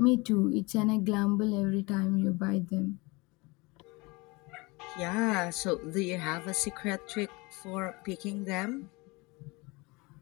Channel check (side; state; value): right; quieter; 25.6 dB